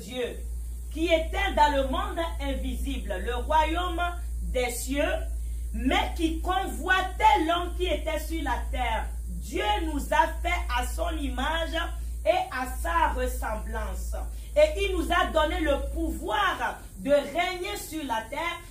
qui étaient dans le monde invisible, le royaume des cieux, mais qui convoitaient l'homme qui était sur la terre. Dieu nous a fait à son image et à sa ressemblance. Et il nous a donné le pouvoir de régner sur la terre,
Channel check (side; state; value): both; identical; correlation 1.00